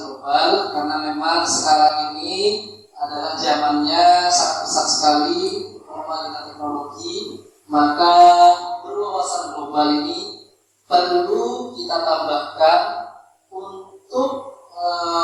global? Karena memang sekarang ini adalah zamannya sangat pesat sekali perkembangan teknologi, maka berwawasan global ini perlu kita tambahkan untuk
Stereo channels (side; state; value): both; identical; correlation 1.00